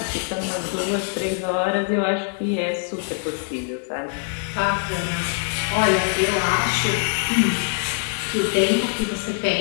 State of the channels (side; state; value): right; silent; 59 dB below the other